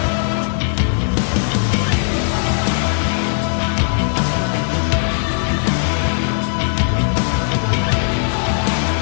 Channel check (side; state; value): right; silent; 65 dB below the other